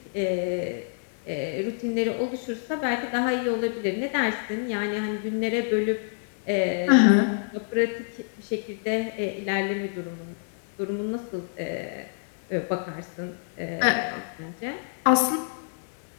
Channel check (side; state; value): right; silent; digital silence